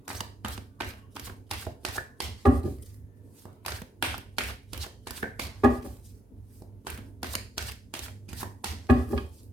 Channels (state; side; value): normal; both; correlation 0.78